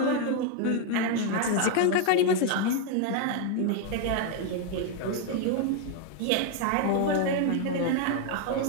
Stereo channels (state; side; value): different; both; correlation 0.01